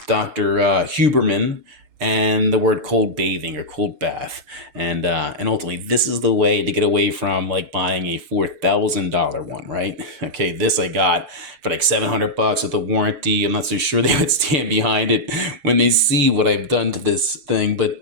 Dr. Huberman and the word cold bathing or cold bath, and ultimately this is the way to get away from like buying a $4,000 one, right? Okay, this I got for like $700 with a warranty. I'm not so sure they would stand behind it when they see what I've done to this thing,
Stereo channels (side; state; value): left; late; 5.9 ms